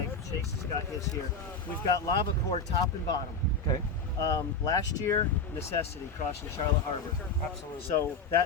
Chase has got his here. We've got lava core top and bottom. Okay. Last year, necessity crossing Charlotte Harbor. Absolutely. So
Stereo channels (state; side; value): quieter; right; 3.8 dB